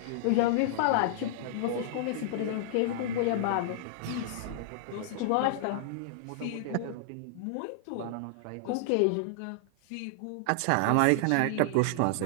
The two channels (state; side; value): different; both; correlation -0.01